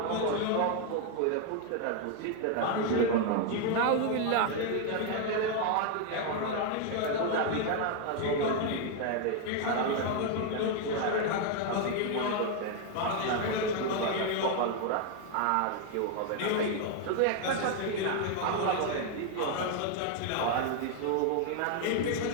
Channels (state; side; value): different; both; correlation 0.01